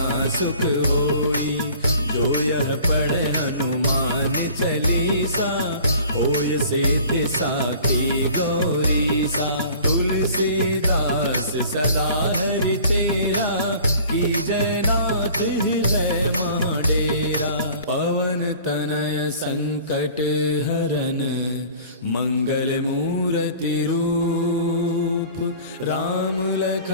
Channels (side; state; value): both; inverted; correlation -0.47